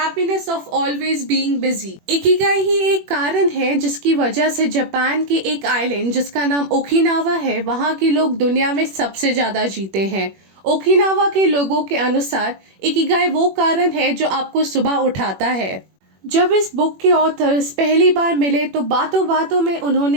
of always being busy. Ikigai ही एक कारण है जिसकी वजह से जापान के एक आइलैंड जिसका नाम ओकिनावा है, वहाँ के लोग दुनिया में सबसे ज्यादा जीते हैं। ओकिनावा के लोगों के अनुसार इकिगाई वो कारण है जो आपको सुबह उठाता है। जब इस बुक के ऑथर्स पहली बार मिले तो बातों बातों में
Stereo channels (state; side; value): late; left; 21 ms